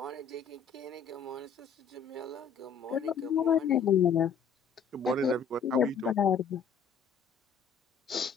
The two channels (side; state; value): right; quieter; 6.3 dB